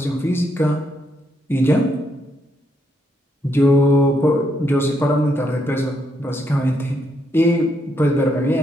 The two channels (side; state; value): both; normal; correlation 0.77